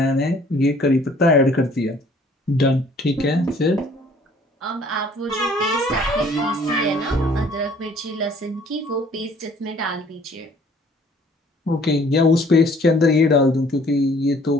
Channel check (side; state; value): both; normal; correlation 0.57